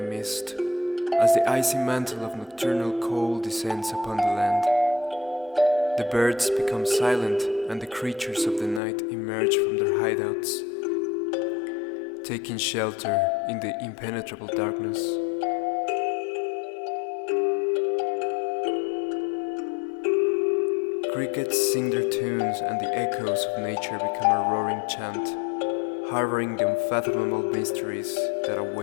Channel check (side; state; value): right; drops out; at 8.8 s